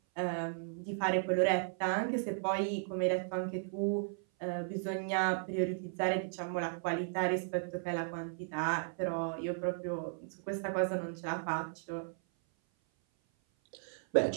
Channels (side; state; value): left; silent; 54 dB below the other